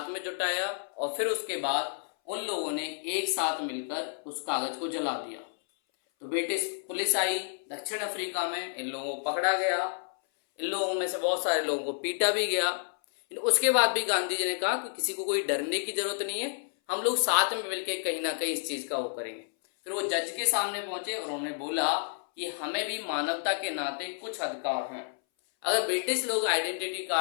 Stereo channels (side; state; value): right; silent; 58 dB below the other